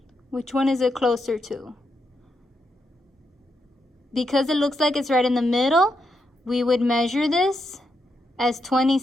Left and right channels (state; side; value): normal; both; correlation 0.82